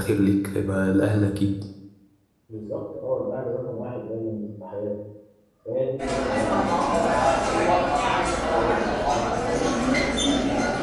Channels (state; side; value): identical; both; correlation 1.00